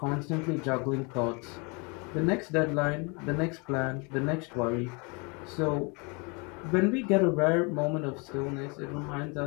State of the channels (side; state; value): right; quieter; 31.3 dB